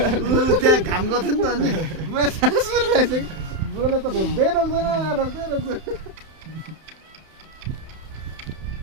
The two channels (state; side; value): late; left; 31 ms